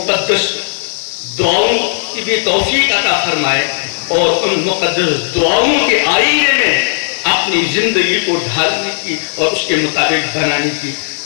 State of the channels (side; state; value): right; silent; digital silence